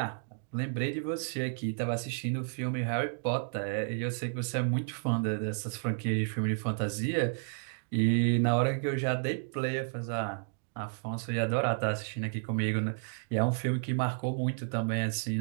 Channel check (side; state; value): left; silent; digital silence